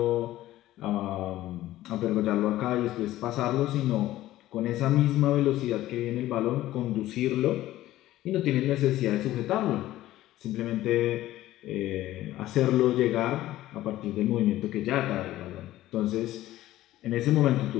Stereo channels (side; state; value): right; quieter; 15.0 dB